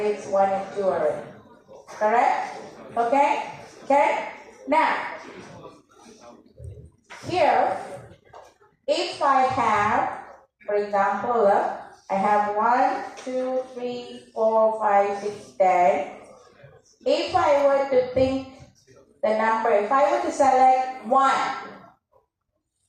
it's 1 and 2 already. Correct? Okay? Okay? Now, here, if I have, for example, I have 1, 2, 3, 4, 5, 6, 10. If I were to think the number, if I were to select 1,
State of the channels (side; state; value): both; identical; correlation 1.00